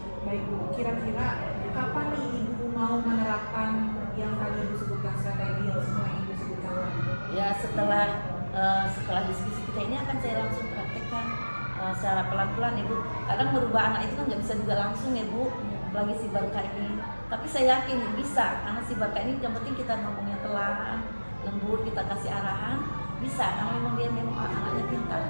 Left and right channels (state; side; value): inverted; both; correlation -1.00